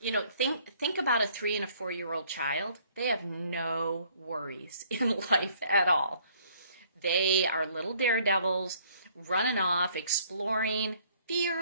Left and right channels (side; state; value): both; inverted; correlation -0.61